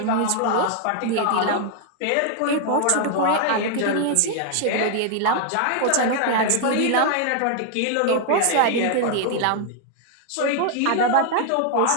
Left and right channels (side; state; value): both; different; correlation 0.00